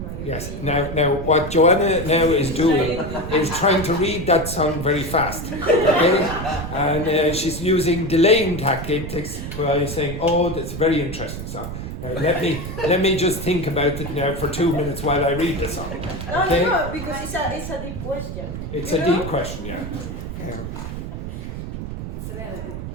my Yes. opinion. Now, what Joanna now is doing is trying to read that song very fast, okay? And she's using delaying tactics by saying, "Oh, that's a very interesting song. Now, let me just think about it now for 2 minutes while I read the song." Okay? No, because it's a deep question. It's You a know? deep question, yeah. It's relative.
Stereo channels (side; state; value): right; noise; rumble, 7 dB below the sound